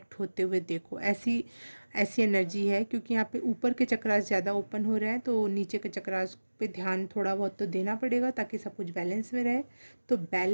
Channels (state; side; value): inverted; both; correlation -1.00